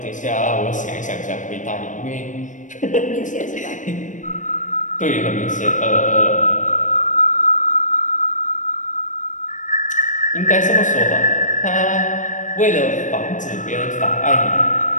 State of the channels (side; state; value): right; late; 0.37 ms